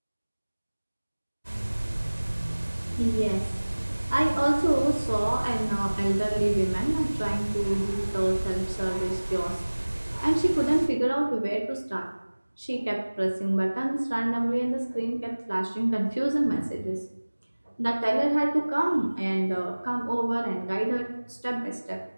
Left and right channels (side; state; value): both; inverted; correlation -1.00